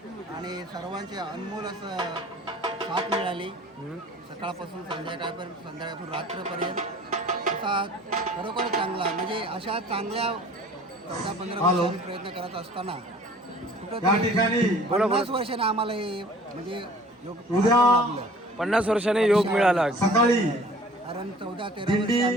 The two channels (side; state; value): both; normal; correlation 0.49